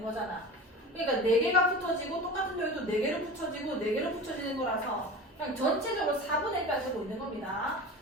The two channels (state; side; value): normal; both; correlation 0.33